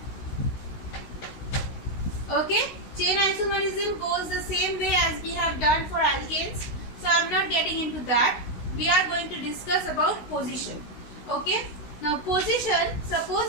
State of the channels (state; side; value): late; right; 16 ms